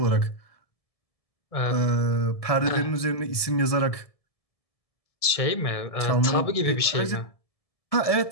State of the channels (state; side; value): late; right; 1.7 ms